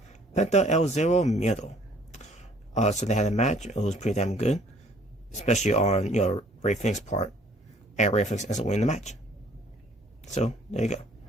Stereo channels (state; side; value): normal; both; correlation 0.58